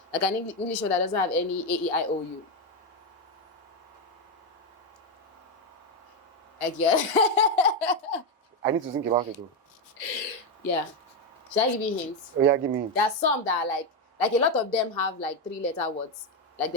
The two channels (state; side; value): normal; both; correlation 0.07